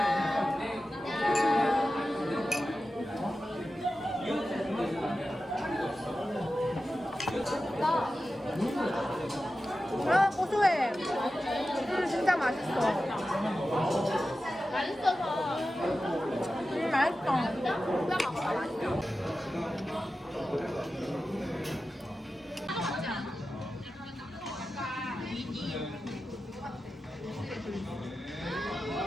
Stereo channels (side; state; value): both; normal; correlation 0.93